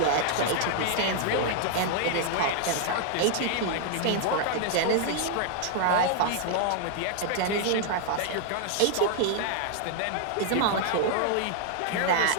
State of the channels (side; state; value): both; different; correlation 0.00